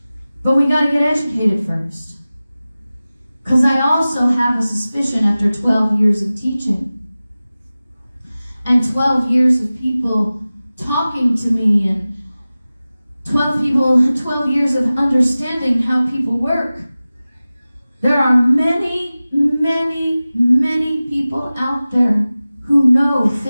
But we got to get educated first. Because I also have a suspicion after 12 years of teaching and 12 years of people talking to me and 12 years of understanding how people work, there are many, many, many people out there who know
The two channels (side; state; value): both; inverted; correlation -0.97